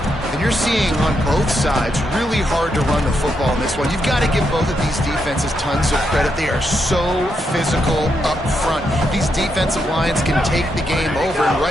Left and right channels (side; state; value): both; normal; correlation 0.81